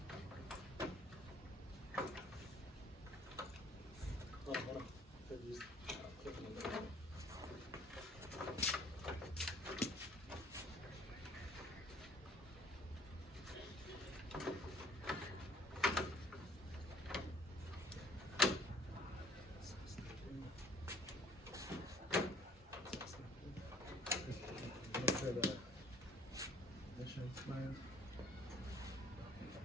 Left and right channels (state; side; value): normal; both; correlation 0.56